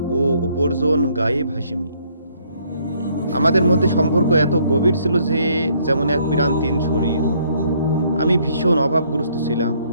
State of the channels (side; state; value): both; inverted; correlation -0.66